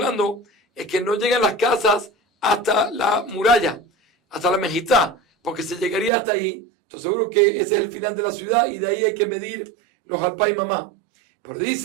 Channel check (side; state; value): left; drops out; at 6.1 s